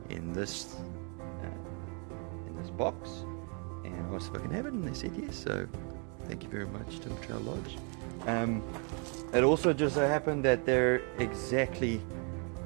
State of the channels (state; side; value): quieter; left; 37.5 dB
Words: in this box, and I asked if I can have it, and they said yes, so thank you very much, Timber Trail Lodge. It also just so happened that they're exactly